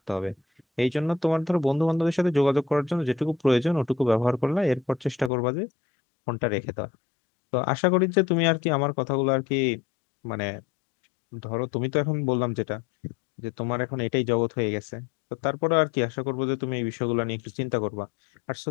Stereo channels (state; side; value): drops out; right; at 5.3 s